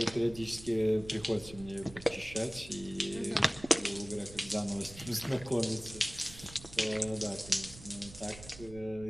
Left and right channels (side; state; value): right; noise; rumble, 17 dB below the sound